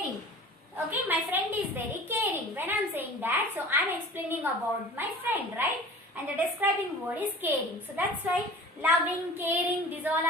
Okay, my friend is very caring. When I'm saying that, so I'm explaining about my friend, right? And the describing word is caring. So that's why loving, caring, these all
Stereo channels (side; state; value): both; normal; correlation 0.41